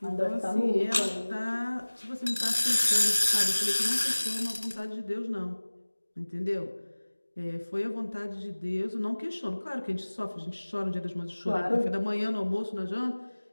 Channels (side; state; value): both; inverted; correlation -1.00